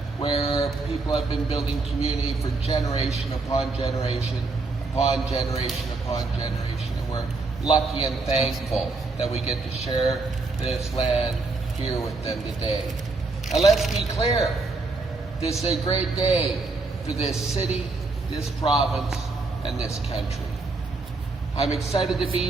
where people have been building community for generation upon generation, upon generation upon generation, and we're lucky and thankful that we get to share this land here with them today. Now let's be clear, this is a great day for this city, this province, and this country. I'm excited to be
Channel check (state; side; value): quieter; left; 3.7 dB